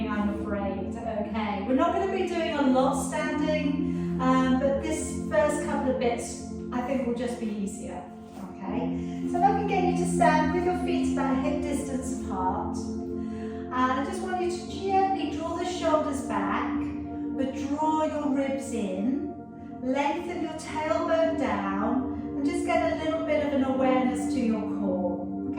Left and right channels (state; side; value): identical; both; correlation 1.00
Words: I'm afraid. Okay, we're not going to be doing a lot standing, but this first couple of bits I think will just be easier. Okay, so if I can get you to stand with your feet about hip distance apart, and I just want you to gently draw the shoulders back, but draw your ribs in, lengthen your tailbone down, and just get a little bit of an awareness to your core.